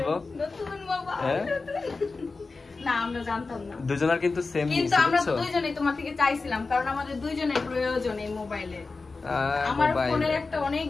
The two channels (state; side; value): quieter; right; 4.0 dB